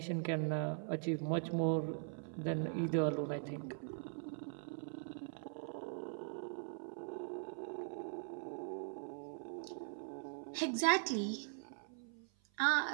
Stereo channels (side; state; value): left; silent; 50 dB below the other